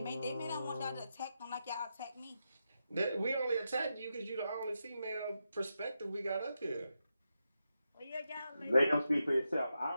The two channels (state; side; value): inverted; both; correlation -0.87